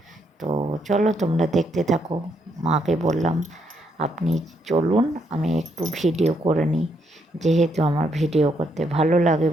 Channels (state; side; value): normal; both; correlation 0.75